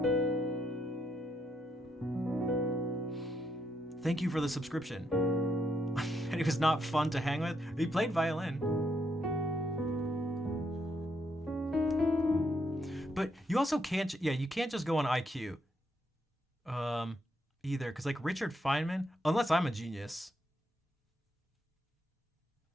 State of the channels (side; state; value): both; normal; correlation 0.77